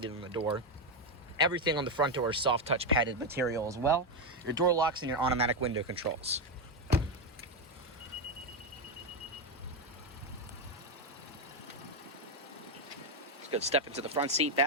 on the door. Everything on the front door is soft touch padded material as well. Your door locks and your automatic window controls. Let's go step into the front seat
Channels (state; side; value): normal; both; correlation 0.07